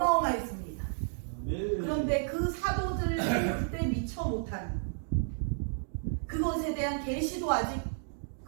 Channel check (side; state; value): left; silent; digital silence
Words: 그런데 그 사도들 그때 미처 못한 그것에 대한 계시도 아직